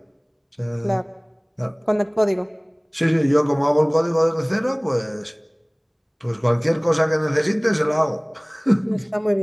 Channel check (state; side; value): identical; both; correlation 1.00